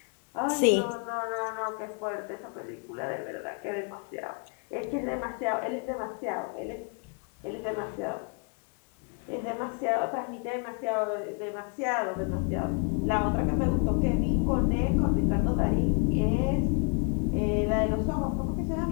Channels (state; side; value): quieter; right; 36.4 dB